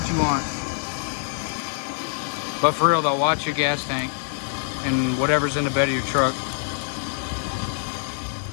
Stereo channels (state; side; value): silent; right; digital silence